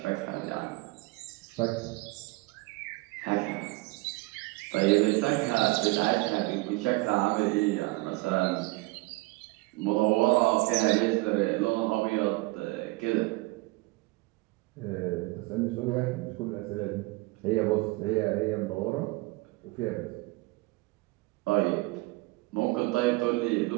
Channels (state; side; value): quieter; left; 23.2 dB